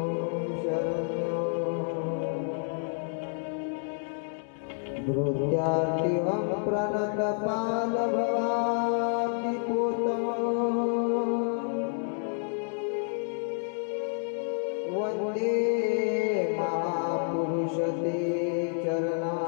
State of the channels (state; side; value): silent; right; digital silence